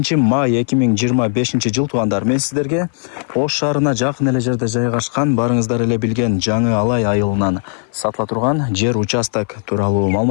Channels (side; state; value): right; silent; 57 dB below the other